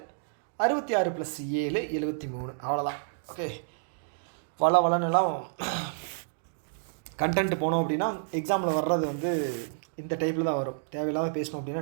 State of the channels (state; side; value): silent; left; digital silence